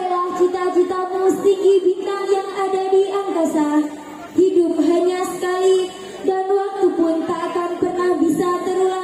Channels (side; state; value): both; identical; correlation 1.00